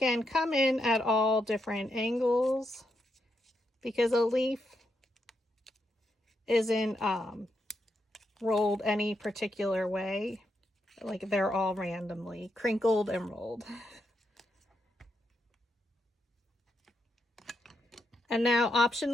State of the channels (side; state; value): both; normal; correlation 0.82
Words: come in at all different angles because a leaf isn't rolled any particular way. Like they're all randomly crinkled and rolled. And now